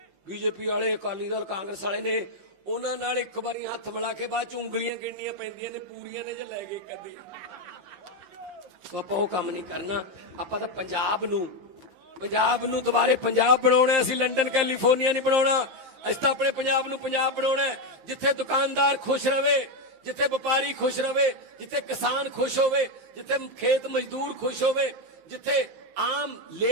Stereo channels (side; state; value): left; late; 15 ms